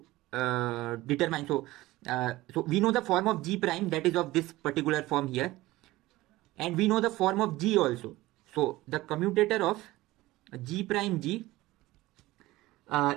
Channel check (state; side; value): quieter; left; 18.2 dB